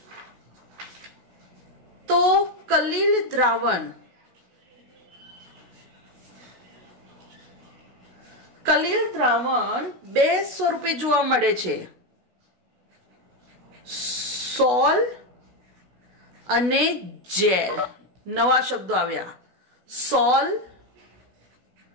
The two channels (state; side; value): late; left; 16 ms